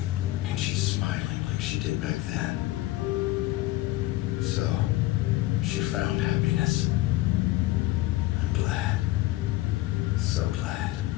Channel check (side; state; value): right; quieter; 17.3 dB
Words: And she's smiling like she did back then. So, she found happiness. I'm glad. So glad.